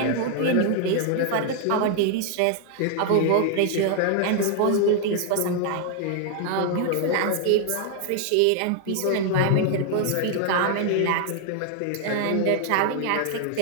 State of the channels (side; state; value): both; different; correlation 0.00